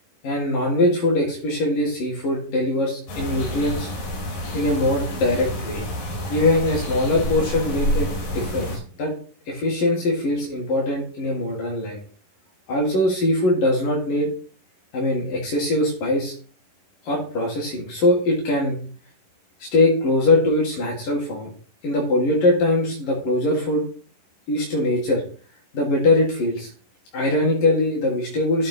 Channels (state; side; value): late; right; 11 ms